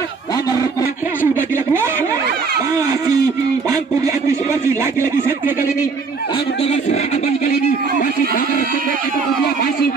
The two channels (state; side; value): quieter; left; 4.8 dB